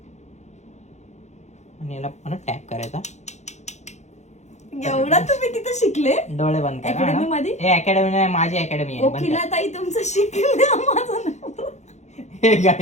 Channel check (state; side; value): late; right; 0.33 ms